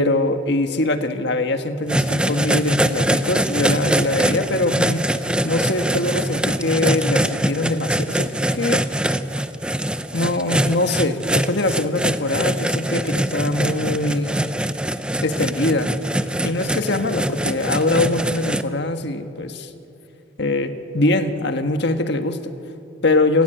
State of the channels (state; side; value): normal; both; correlation 0.39